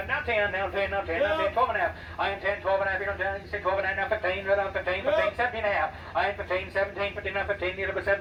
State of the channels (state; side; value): identical; both; correlation 1.00